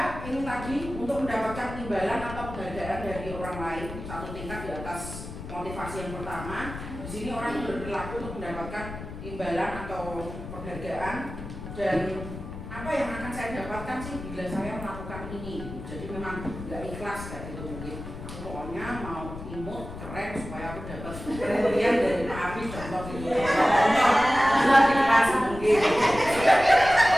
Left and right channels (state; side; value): noise; left; rumble, 10 dB below the sound